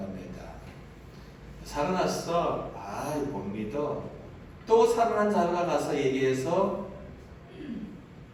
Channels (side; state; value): both; identical; correlation 1.00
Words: 살아났어? 못 믿어. 또 살아난 자가 가서 얘기해서